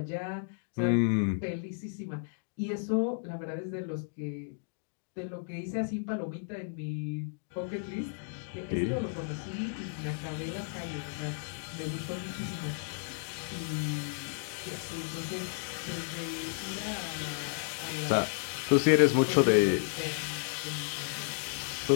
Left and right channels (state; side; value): silent; right; digital silence